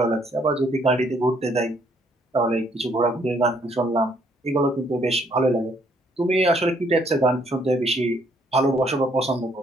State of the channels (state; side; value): normal; both; correlation 0.68